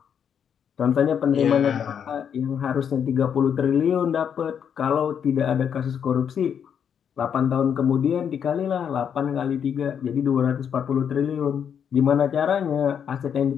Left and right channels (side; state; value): right; quieter; 8.0 dB